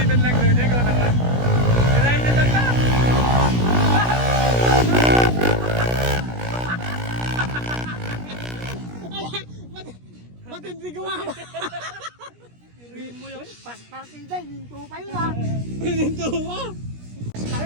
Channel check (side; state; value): left; late; 17 ms